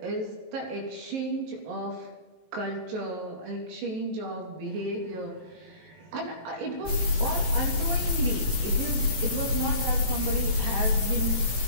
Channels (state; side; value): late; left; 17 ms